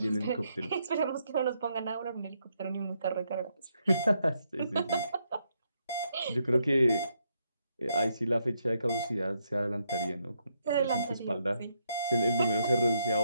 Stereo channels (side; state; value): both; inverted; correlation -0.77